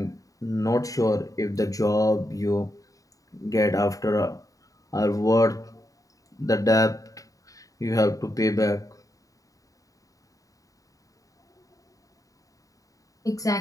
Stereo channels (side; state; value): right; late; 0.16 ms